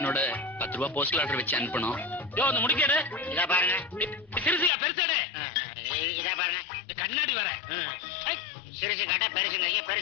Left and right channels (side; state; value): right; drops out; at 4.7 s